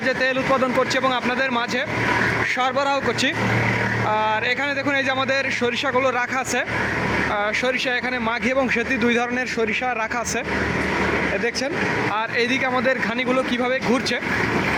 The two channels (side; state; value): both; identical; correlation 1.00